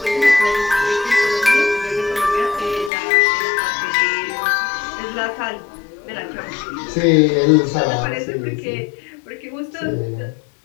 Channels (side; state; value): right; drops out; at 2.9 s